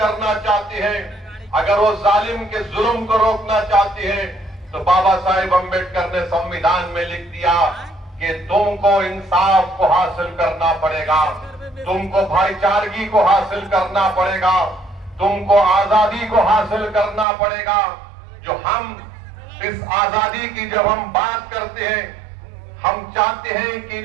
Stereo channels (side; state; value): left; drops out; at 17.2 s